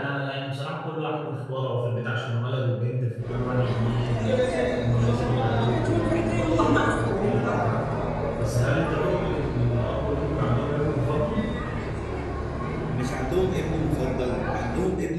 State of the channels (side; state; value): both; identical; correlation 1.00